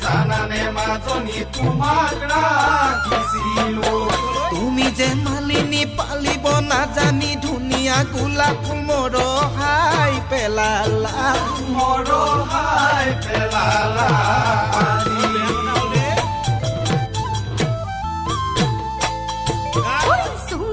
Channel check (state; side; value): identical; both; correlation 1.00